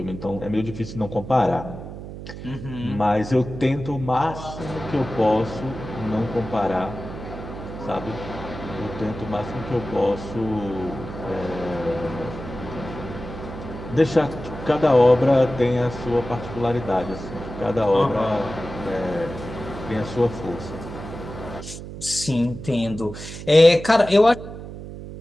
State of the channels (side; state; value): right; noise; hum, 11 dB below the sound